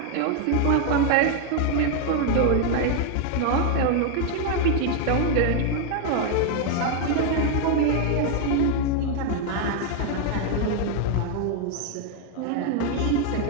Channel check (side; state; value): both; different; correlation 0.01